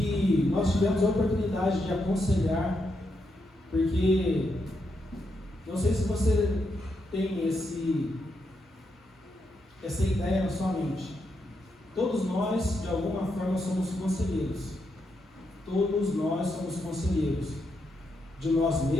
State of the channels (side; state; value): both; normal; correlation 0.82